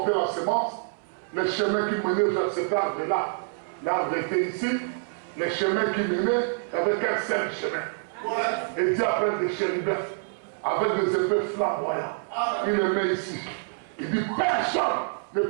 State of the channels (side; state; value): left; silent; 60 dB below the other